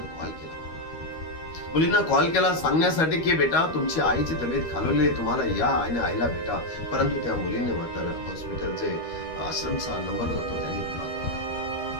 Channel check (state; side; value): late; right; 13 ms